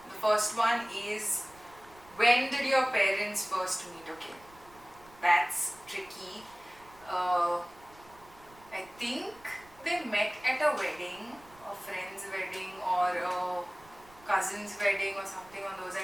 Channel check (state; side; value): noise; right; rumble, 25 dB below the sound